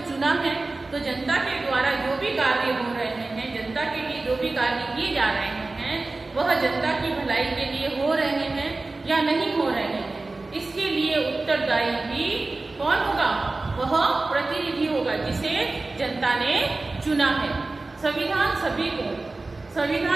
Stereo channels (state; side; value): quieter; left; 3.3 dB